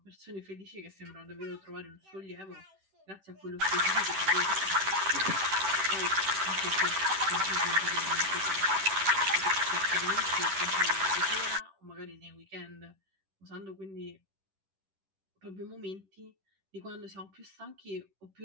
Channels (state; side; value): late; left; 10 ms